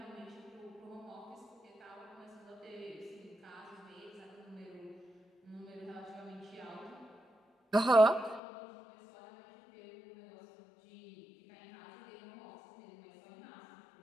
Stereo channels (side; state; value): right; drops out; at 8.4 s